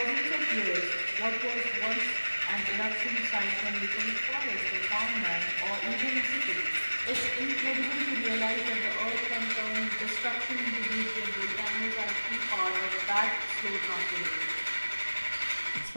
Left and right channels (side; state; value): both; inverted; correlation -1.00